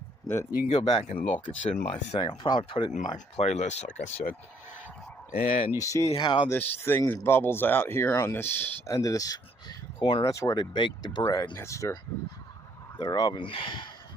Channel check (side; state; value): both; normal; correlation 0.67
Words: You can go back and look. It's in my thing. I'll probably put it in my playlist, like I said. And you see how this thing bubbles out here on this end of this corner? That's where they bake the bread. That's their oven.